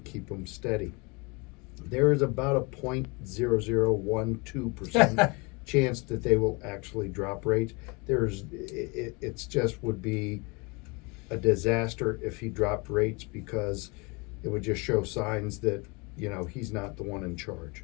keep them steady. There is about a 0.0012% chance that they will actually drop rates. It's just would be a disaster if he dropped rates, because it would just show signs that, he's not the one in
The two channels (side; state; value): right; quieter; 28.7 dB